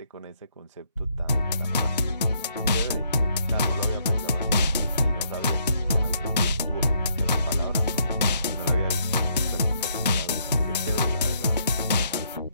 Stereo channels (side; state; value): both; inverted; correlation -0.71